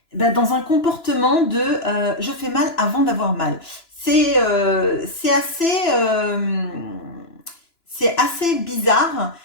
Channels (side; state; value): right; late; 2.9 ms